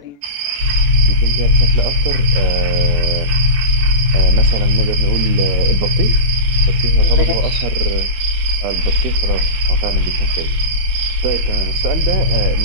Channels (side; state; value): left; late; 14 ms